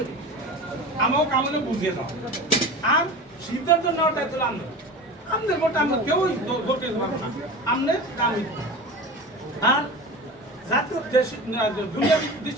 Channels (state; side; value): normal; both; correlation 0.32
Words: আমাকে কামনে বুঝিয়ে দাও। আর সিদ্ধান্ত নেওয়ার দায়িত্ব আনবে, আপনার ভোটটা আমরা কেউই ভোট দিতে পারবো না, আপনার কাম। আর জাতীয় দুনিয়াবী